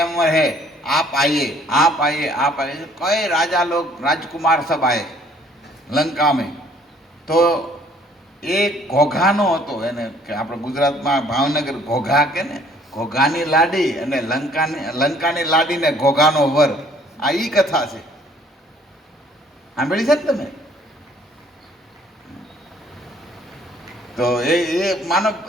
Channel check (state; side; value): normal; both; correlation 0.59